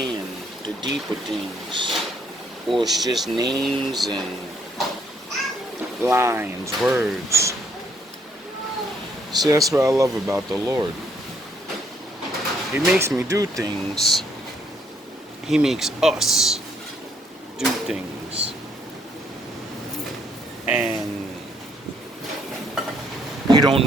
the deeper things. Or it's just names and lines, words. See, that's what I love about the Lord. He makes me do things. He makes us do things. And you don't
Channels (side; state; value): both; normal; correlation 0.69